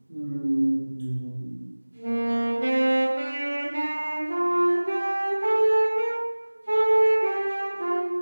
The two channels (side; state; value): both; inverted; correlation -1.00